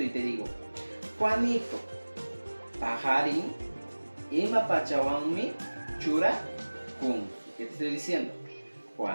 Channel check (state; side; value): inverted; both; correlation -1.00